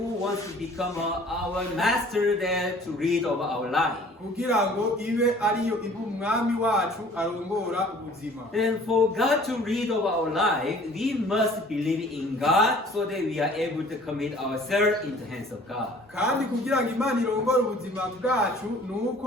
wants to become our master there to read of our life. kugira ngo ibe ariyo iba umwami wacu arongora ubuzima. Then for God to read of our life, we must believe in God so that we are able to commit ourselves in the hands of God. kandi kugira ngo Imana irongore ubuzima bwacu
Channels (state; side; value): normal; both; correlation 0.52